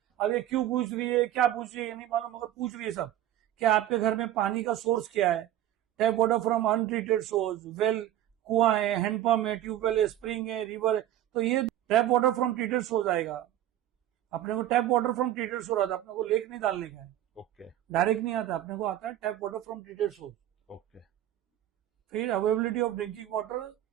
अब ये क्यों पूछ रही है, क्या पूछ रही है, ये नहीं मालूम, मगर पूछ रही है सब। क्या आपके घर में पानी का सोर्स क्या है? Tap water from untreated source, well, कुआं है, हैंडपंप है, ट्यूबवेल है, स्प्रिंग है, रिवर है। तो ये tap water from treated source आएगा। अपने को tap water from treated source आता है, अपने को लेक नहीं डालने का है। ओके। डायरेक्ट नहीं आता, अपने को आता है tap water from treated source. Okay. फिर अवेलेबिलिटी ऑफ ड्रिंकिंग वाटर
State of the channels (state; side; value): quieter; left; 12.5 dB